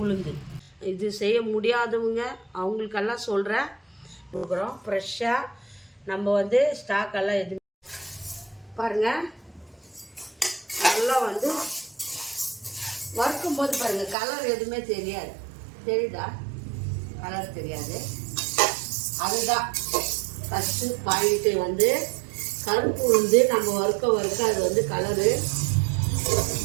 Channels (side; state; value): left; drops out; at 14.2 s